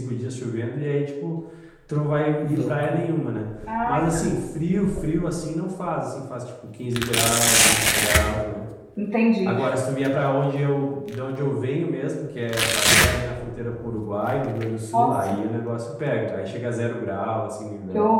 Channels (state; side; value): identical; both; correlation 1.00